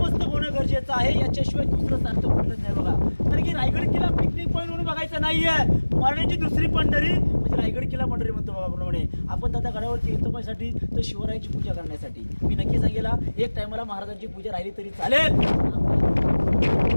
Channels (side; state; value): both; inverted; correlation -1.00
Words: होणं गरजेचं आहे. याच्याशिवाय दुसरं सार्थ कुठलंच नाही बघा. कारण की रायगड किल्ला पिकनिक पॉईंट म्हणून बघायचा नाहीये, मराठीची दुसरी पंढरी म्हणजे रायगड किल्ला पंढरी म्हणतो बघा. प्रमाणे आपण दादा गडावरती येतो पायसाठी तर शिवरायांची पूजा करण्यासाठी. मी नक्की सांगेला एक टायमाला महाराजांची पूजा राहिली तरी चालेल.